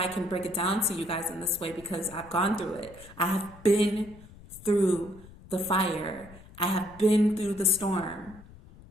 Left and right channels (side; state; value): left; noise; rumble, 20 dB below the sound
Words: I can break it down to you guys in this way, because I've gone through it. I have been through the fire. I have been through the storm.